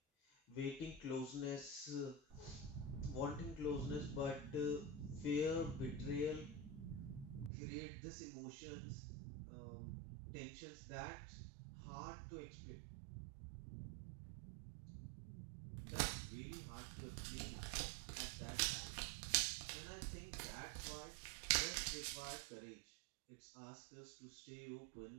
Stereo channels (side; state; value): left; drops out; at 7.5 s